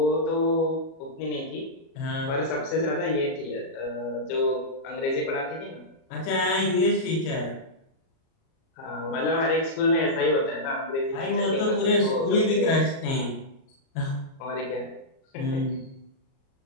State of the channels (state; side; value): late; right; 37 ms